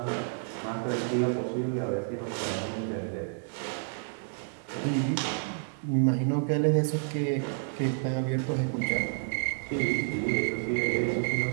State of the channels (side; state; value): left; silent; 58 dB below the other